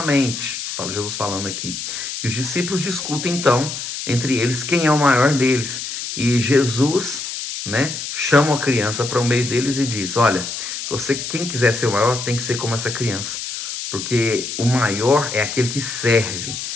Jesus falando aqui. E os discípulos discutem então entre eles quem é o maior deles. E Jesus, né, chama a criança para o meio deles e diz, olha, quem quiser ser o maior tem que ser como essa criança. Porque o maior é aquele que serve.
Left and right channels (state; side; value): noise; left; hiss, 6 dB below the sound